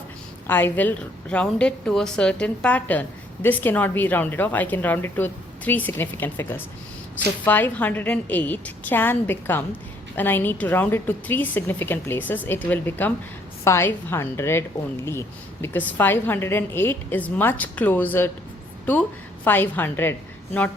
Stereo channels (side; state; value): both; normal; correlation 0.66